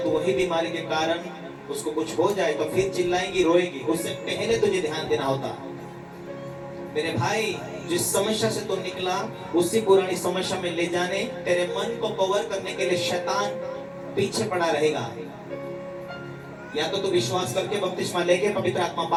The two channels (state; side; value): identical; both; correlation 1.00